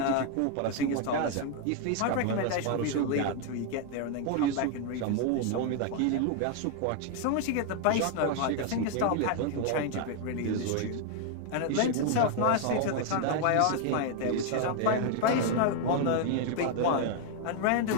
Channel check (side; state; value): both; different; correlation 0.00